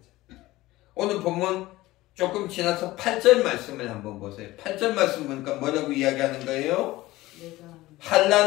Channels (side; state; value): right; quieter; 18.0 dB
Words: 오늘 본문 조금 지나서 8절 말씀을 한번 보세요. 8절 말씀 보니까 뭐라고 이야기하는 거예요?